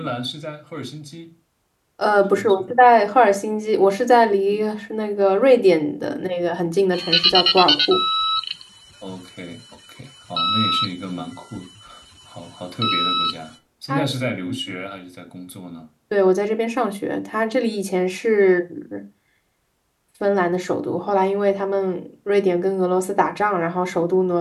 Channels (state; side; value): identical; both; correlation 1.00